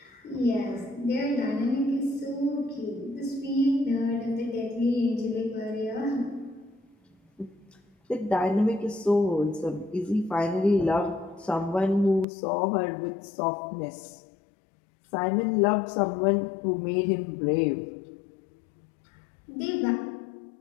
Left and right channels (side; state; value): right; drops out; at 12.2 s